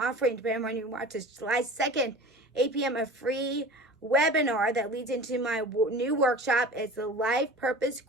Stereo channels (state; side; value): normal; both; correlation 0.38